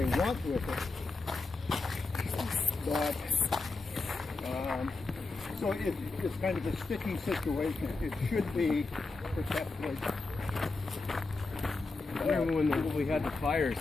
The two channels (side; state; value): right; quieter; 3.6 dB